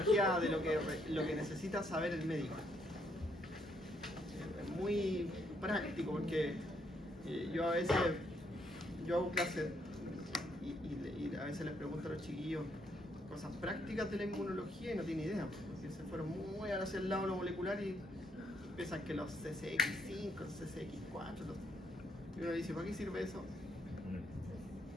de lo que necesita saber el médico. Es muy práctico porque yo hago clases y a veces les pregunto a los chiquillos cosas prácticas de la inmunología y no tienen idea, porque se fueron muy hacia el lado de lo molecular y piensan que los CCX5, los CCX4, y uno dice, ¿para qué sirve eso?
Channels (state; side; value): normal; both; correlation 0.73